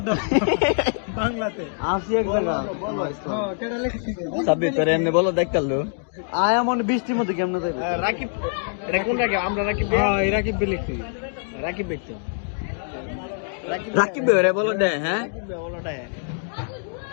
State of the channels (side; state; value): right; silent; digital silence